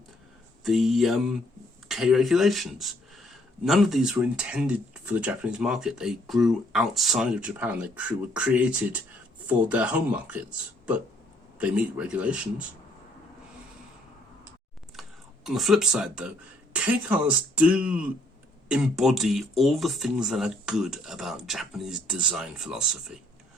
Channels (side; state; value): both; normal; correlation 0.67